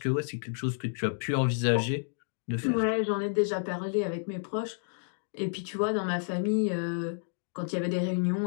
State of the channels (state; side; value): silent; right; digital silence